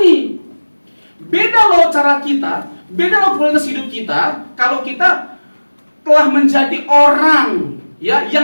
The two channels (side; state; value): both; inverted; correlation -1.00